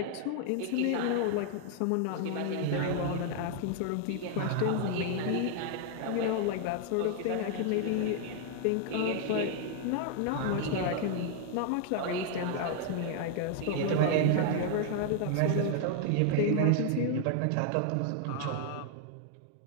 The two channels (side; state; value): both; different; correlation 0.00